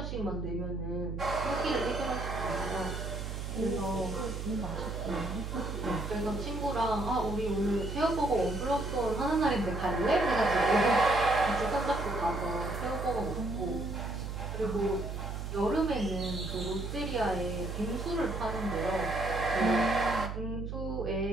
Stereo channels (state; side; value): noise; right; hum, 5 dB below the sound